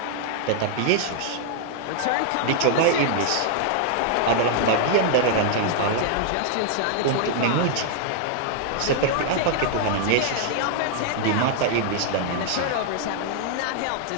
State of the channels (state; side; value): different; both; correlation 0.00